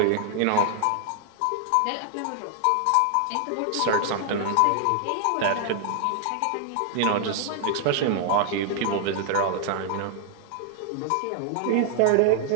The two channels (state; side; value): different; both; correlation 0.00